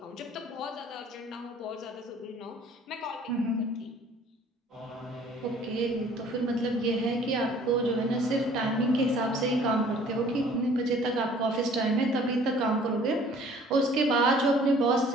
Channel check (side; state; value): both; normal; correlation 0.53